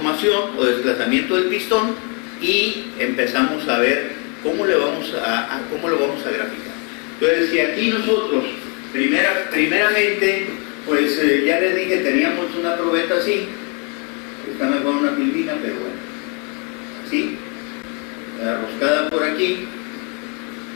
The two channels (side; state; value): right; quieter; 32.8 dB